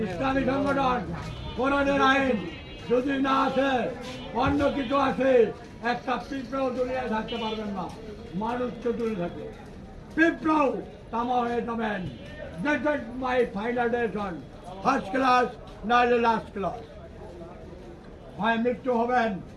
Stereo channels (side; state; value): both; identical; correlation 1.00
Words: ইসলামী সংগঠন, কোরআনের আইন যদি না আসে, অন্য কিছু আছে, একটা পিঁপড়াও দুনিয়ায় থাকতে পারবেন না। মানুষ চতুর্থ থাকে, পিঁপড়াও তামা হয়ে যাবেন। This is my final decision. First class নাহলে লাস্ট ক্লাস। হয় মৃত্যু হবেন